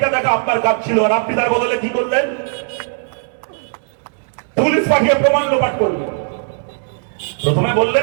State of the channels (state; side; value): silent; left; digital silence